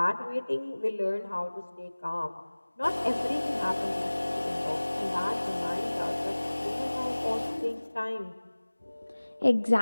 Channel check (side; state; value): both; inverted; correlation -1.00